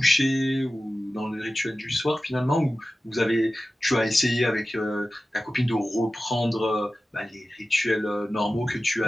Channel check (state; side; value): normal; both; correlation 0.95